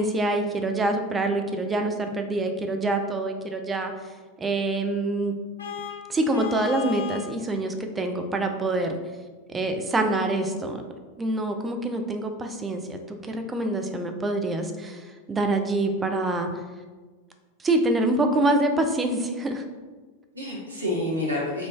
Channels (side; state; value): both; normal; correlation 0.43